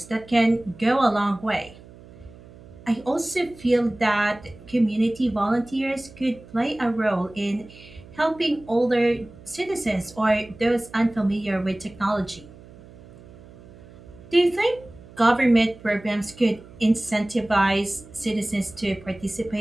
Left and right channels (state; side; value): noise; right; hum, 21 dB below the sound